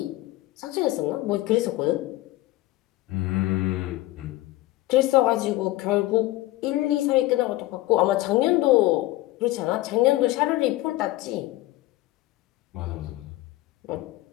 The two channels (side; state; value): right; quieter; 17.6 dB